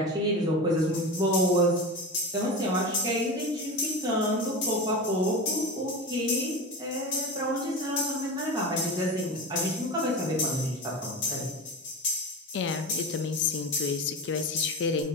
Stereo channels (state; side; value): normal; both; correlation 0.26